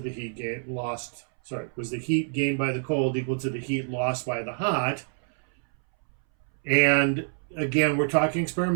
the heat lost? Sorry, was the heat gained by the cold equal to the heat lost by the hot? And again, we're talking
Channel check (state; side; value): silent; left; 60 dB below the other